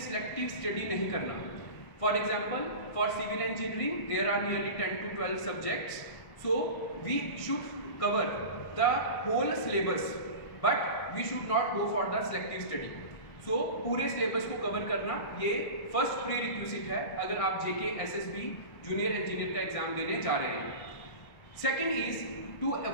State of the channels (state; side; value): late; right; 1.6 ms